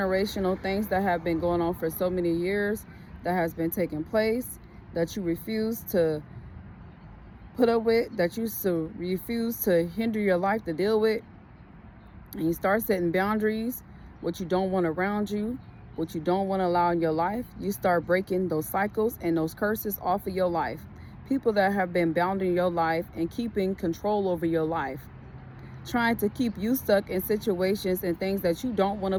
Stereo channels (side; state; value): both; identical; correlation 1.00